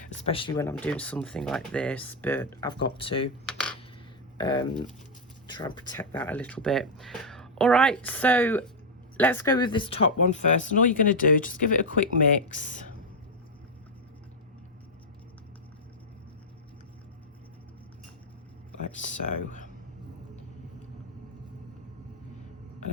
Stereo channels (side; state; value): both; normal; correlation 0.00